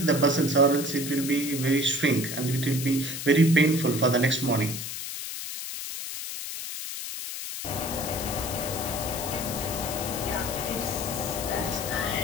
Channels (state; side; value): noise; left; hiss, 6 dB below the sound